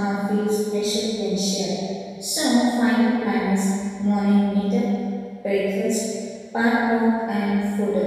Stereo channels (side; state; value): both; identical; correlation 1.00